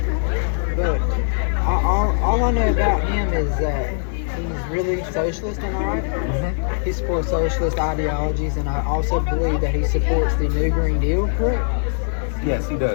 but all I know about him is that he's really socialist, am I right? He supports socialist ideologies, and I also believe that he supports the New Green Deal, correct? Yes, he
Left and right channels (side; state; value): right; silent; 65 dB below the other